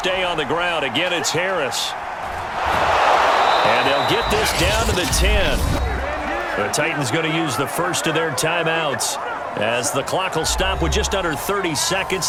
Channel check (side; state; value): both; identical; correlation 1.00